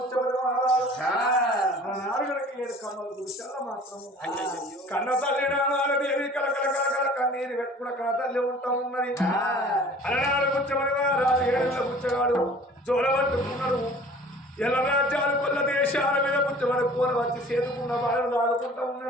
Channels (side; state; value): both; normal; correlation 0.48